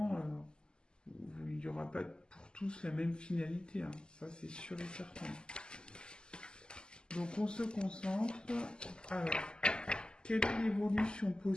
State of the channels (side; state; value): right; late; 0.047 ms